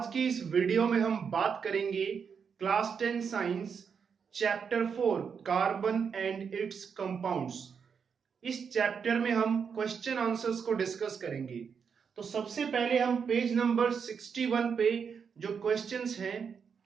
की इस वीडियो में हम बात करेंगे class 10 science chapter 4 carbon and it's compounds. इस चैप्टर में हम क्वेश्चन आंसर्स को डिस्कस करेंगे। तो सबसे पहले हम पेज नंबर 61 पे जो क्वेश्चंस हैं,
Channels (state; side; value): quieter; left; 6.5 dB